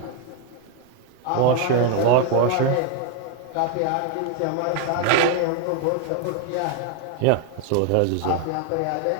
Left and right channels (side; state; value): both; different; correlation 0.01